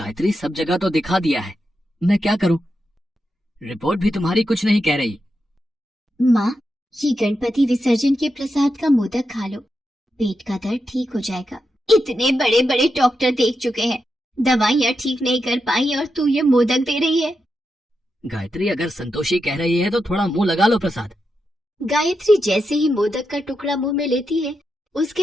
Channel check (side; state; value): both; normal; correlation 0.87